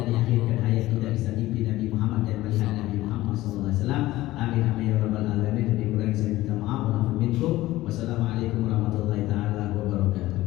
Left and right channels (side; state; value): right; quieter; 16.8 dB